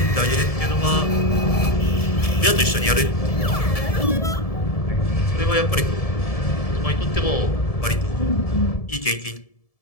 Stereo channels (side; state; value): right; late; 1.7 ms